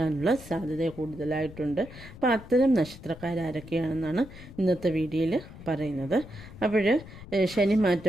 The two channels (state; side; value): noise; left; rumble, 16 dB below the sound